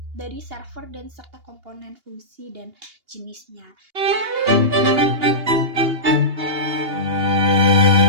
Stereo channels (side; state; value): left; late; 2.8 ms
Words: dari server dan serta komponen fungsi dan jenisnya.